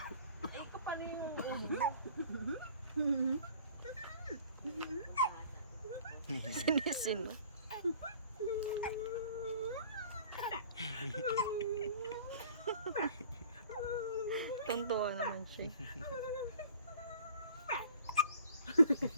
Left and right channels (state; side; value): inverted; both; correlation -0.50